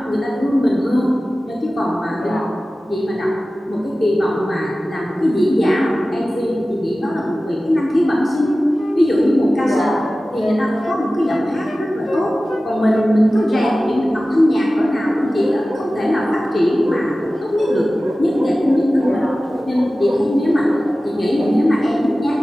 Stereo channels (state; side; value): normal; both; correlation 0.96